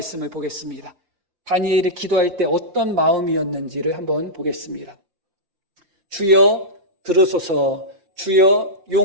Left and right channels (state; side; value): late; left; 5.7 ms